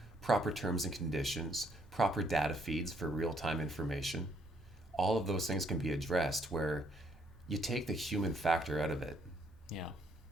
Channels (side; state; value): both; normal; correlation 0.70